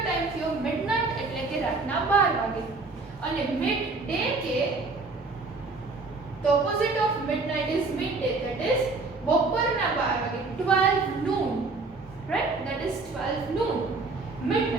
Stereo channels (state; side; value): quieter; left; 3.7 dB